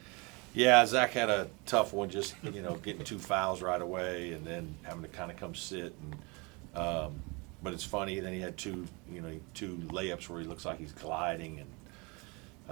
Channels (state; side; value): quieter; left; 28.5 dB